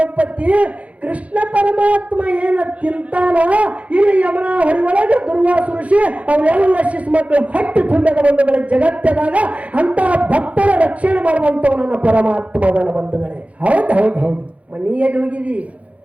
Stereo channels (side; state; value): left; late; 0.065 ms